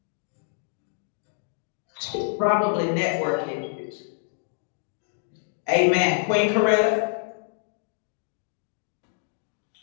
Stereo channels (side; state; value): right; silent; 60 dB below the other